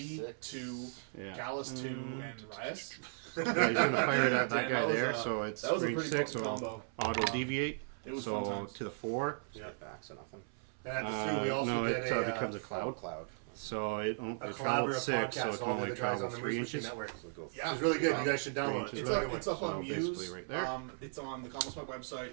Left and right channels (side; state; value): left; silent; 53 dB below the other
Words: 6. 2, Yeah. Gallus 2, and Riot. Yeah, he's gonna fire it at that Damn, guy that was, there, so it's that was a range pretty 6, potent so combo. auto deviate. It was so fun times. to the 4. Yeah. Get back, so nothing. And at the Sioux, we also no, get it a, becomes a cloud. Cloud. So it a travels collaborative 6, so podcast. it can All only the guys travel on the 3 Moose inches. Machine Network. So go. Yeah. It's really good. You guys should download it. It's It's really up, good. it's up on So Muse. basically right there. It's on the Common Smoke